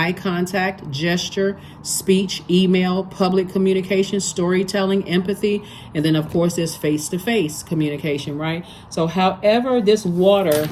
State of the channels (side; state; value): both; identical; correlation 1.00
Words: contact, gesture, speech, email, public communication, storytelling, empathy, and then of course there's face-to-face communication, right? So however this water,